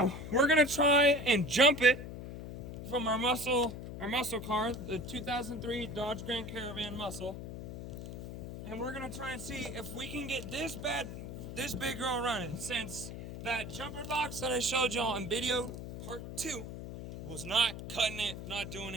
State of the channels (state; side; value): noise; left; hum, 9 dB below the sound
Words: we're gonna try and jump it from our muscle car, the 2003 Dodge Grand Caravan Muscle. And we're gonna try and see if we can get this big girl running, since that jumper box that I showed y'all in video part 2 was not cutting it, not doing